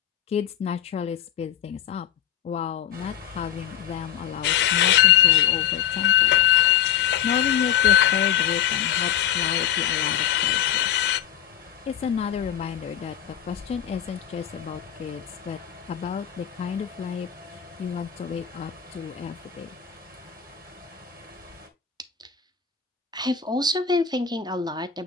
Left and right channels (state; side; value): quieter; right; 10.0 dB